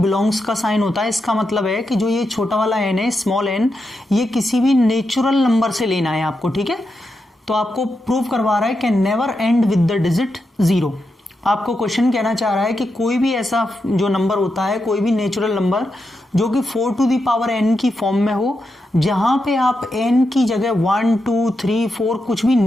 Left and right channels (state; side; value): normal; both; correlation 0.86